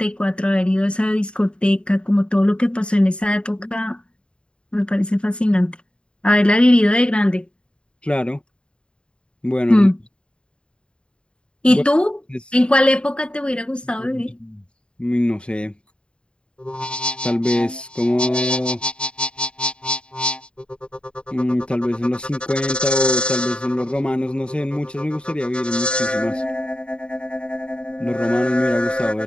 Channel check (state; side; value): late; right; 0.054 ms